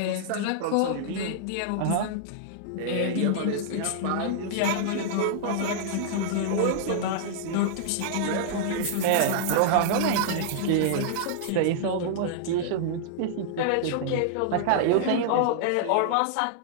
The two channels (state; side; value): different; both; correlation -0.01